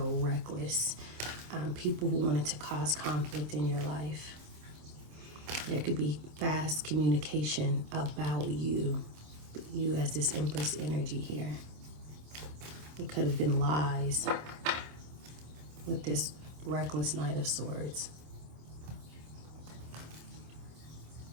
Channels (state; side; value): late; left; 26 ms